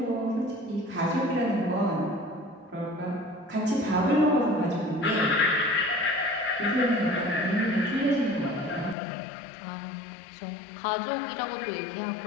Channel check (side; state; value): right; drops out; at 9.0 s